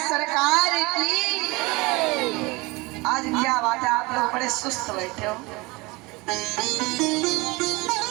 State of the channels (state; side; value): quieter; left; 24.2 dB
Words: सरकार की। आज क्या बात है, आप लोग बड़े सुस्त बैठे हो।